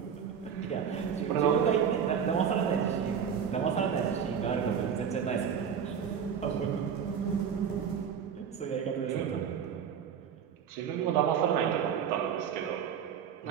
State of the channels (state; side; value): quieter; left; 7.6 dB